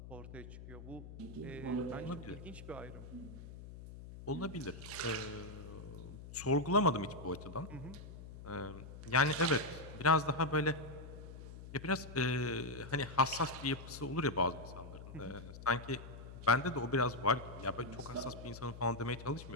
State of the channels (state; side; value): noise; left; hum, 13 dB below the sound